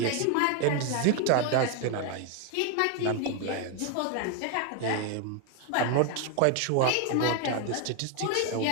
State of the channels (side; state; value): both; different; correlation 0.01